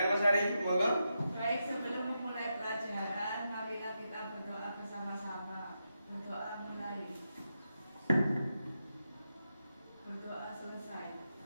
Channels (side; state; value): both; inverted; correlation -0.87